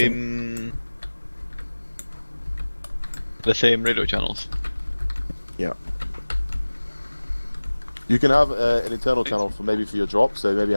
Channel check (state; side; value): inverted; both; correlation -1.00